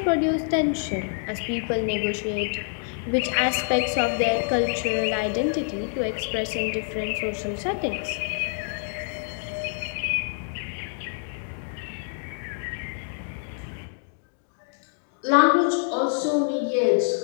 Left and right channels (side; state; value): right; silent; 59 dB below the other